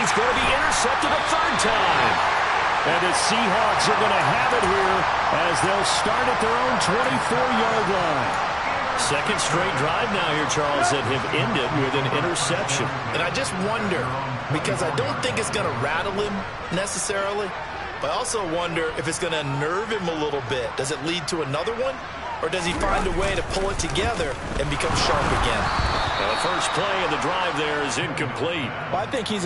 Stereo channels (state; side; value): identical; both; correlation 1.00